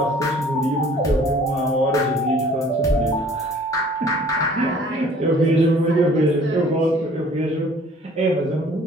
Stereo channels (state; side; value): normal; both; correlation 0.53